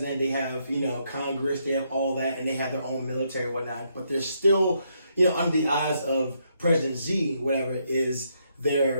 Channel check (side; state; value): both; inverted; correlation -0.76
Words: they have, Congress, they have all that, and they have their own military and whatnot, but they're still, under the eyes of President Xi, whatever, is